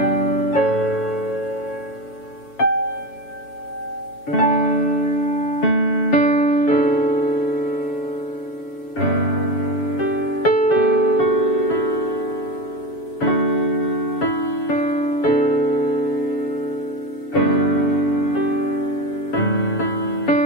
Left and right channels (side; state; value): right; late; 7.2 ms